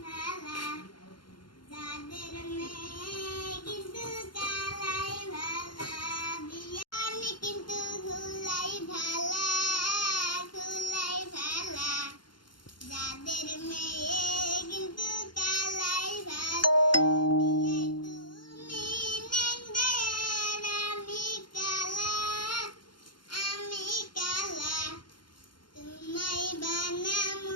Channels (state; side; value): late; right; 0.72 ms